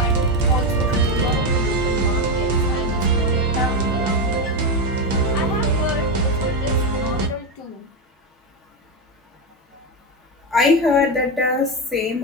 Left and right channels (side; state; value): both; normal; correlation 0.11